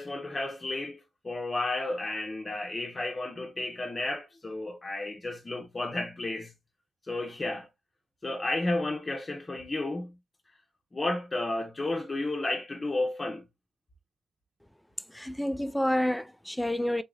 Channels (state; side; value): normal; both; correlation 0.95